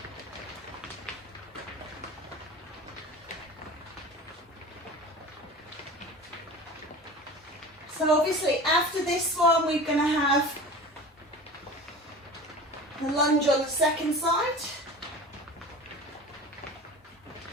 So obviously after this one we're going to have the lunge on the second side.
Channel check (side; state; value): both; normal; correlation 0.36